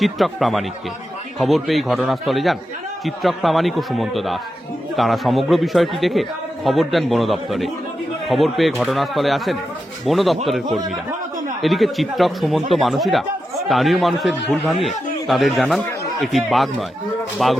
প্রামাণিককে। খবর পেয়ে ঘটনাস্থলে যান চিত্রক প্রামাণিক ও সুমন্ত দাস। তারা সমগ্র বিষয়টি দেখে খবর দেন বন দপ্তরে। খবর পেয়ে ঘটনাস্থলে আসেন বন দপ্তরের কর্মীরা। এদিকে চিত্রক, সুমন্ত, মানসীরা স্থানীয় মানুষের ভুল ভাঙিয়ে তাদের জানান এটি বাঘ নয়,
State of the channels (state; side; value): normal; both; correlation 0.89